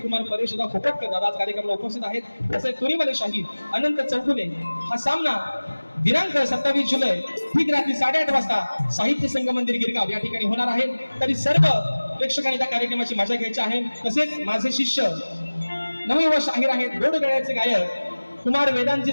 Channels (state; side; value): inverted; both; correlation -1.00